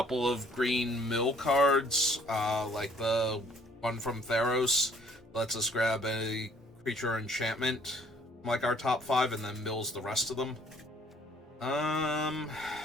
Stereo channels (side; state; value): both; normal; correlation 0.60